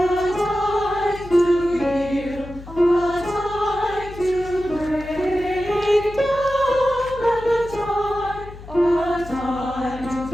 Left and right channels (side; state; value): left; noise; hum, 15 dB below the sound